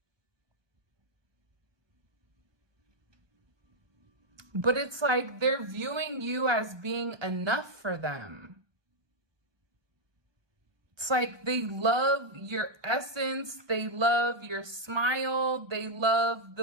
But it's like they're viewing you as being enough for them. It's like they love your essence. They love your smile. They love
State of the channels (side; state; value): left; late; 1.2 ms